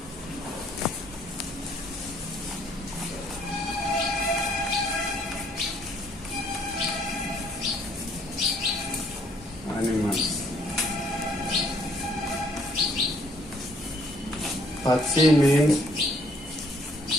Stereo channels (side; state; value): both; normal; correlation 0.64